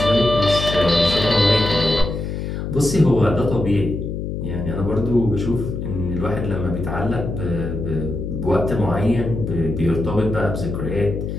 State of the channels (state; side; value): noise; left; hum, 4 dB below the sound